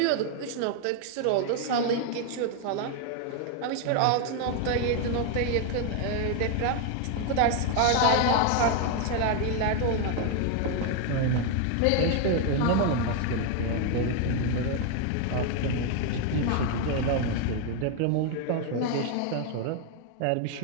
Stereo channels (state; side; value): different; both; correlation 0.01